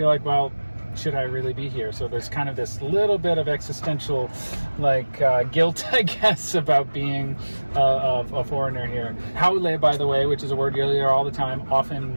like, well, should I really be here? So there's kind of this little bit of existential guilt, I guess, about being a foreigner here. Haole, by the way, which is a word you'll hear all the time, often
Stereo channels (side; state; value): both; inverted; correlation -1.00